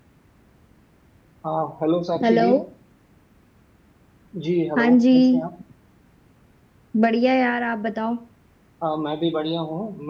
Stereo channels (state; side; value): identical; both; correlation 1.00